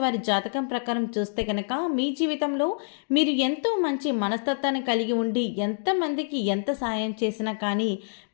వారి జాతకం ప్రకారం చూస్తే కనుక మీ జీవితంలో మీరు ఎంతో మంచి మనస్తత్వాన్ని కలిగి ఉండి ఎంతమందికి ఎంత సాయం చేసినా కానీ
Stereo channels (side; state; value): right; silent; digital silence